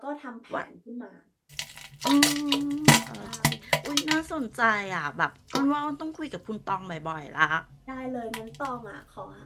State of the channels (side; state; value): both; identical; correlation 1.00